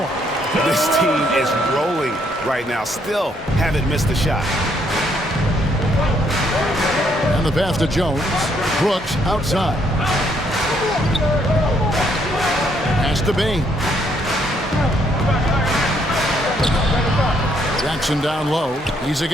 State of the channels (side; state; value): both; normal; correlation 0.71